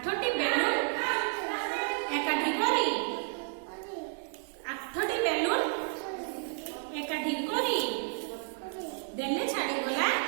बेलून एकाठी करी 8टी बेलून एकाठी करी देले छाड़ी गला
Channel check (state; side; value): silent; left; 57 dB below the other